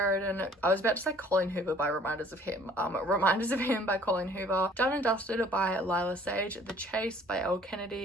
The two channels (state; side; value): normal; both; correlation 0.55